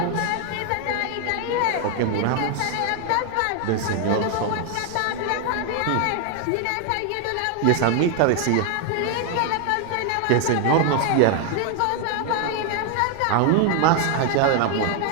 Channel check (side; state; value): both; different; correlation 0.00